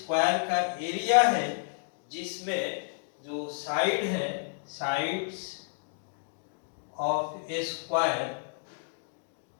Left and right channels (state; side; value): silent; right; digital silence